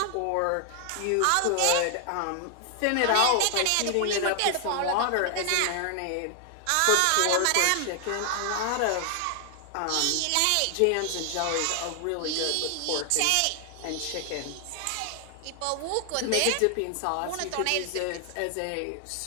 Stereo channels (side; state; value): both; different; correlation 0.00